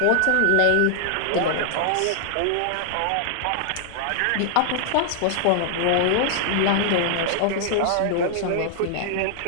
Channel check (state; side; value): different; both; correlation 0.00